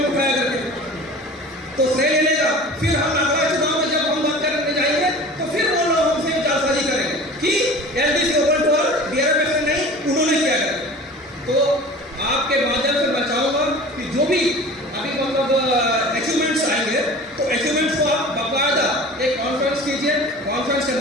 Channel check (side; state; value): both; normal; correlation 0.40